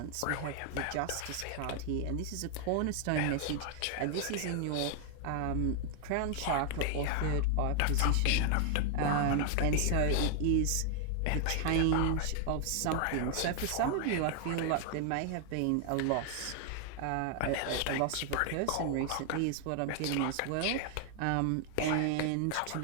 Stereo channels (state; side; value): different; both; correlation 0.00